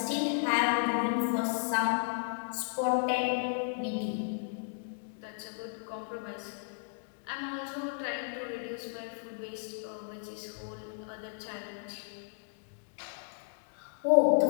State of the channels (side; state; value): right; silent; digital silence